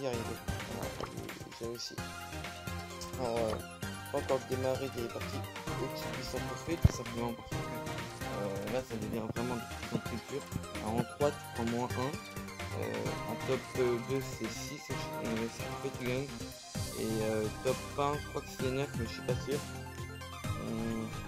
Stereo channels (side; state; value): both; identical; correlation 1.00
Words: arrivé, voilà, j'ai réussi. Alors, pas encore démarré des parties au-dessus de 800 trophées, tout simplement parce que là ça devient vraiment de plus en plus dur. Alors, en 3 tu prends moins 1, en top 2 c'est 6 trophées tu gagnes, et top 1 je crois que c'est 9 mais je suis pas sûr.